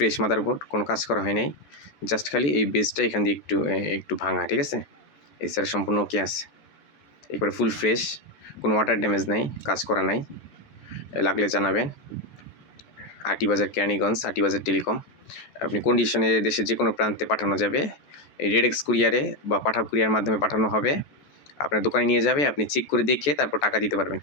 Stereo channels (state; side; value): late; right; 14 ms